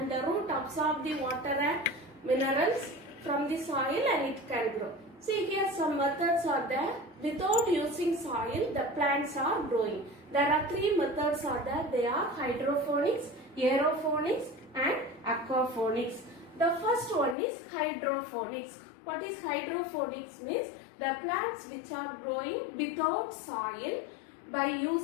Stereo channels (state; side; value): drops out; right; at 17.4 s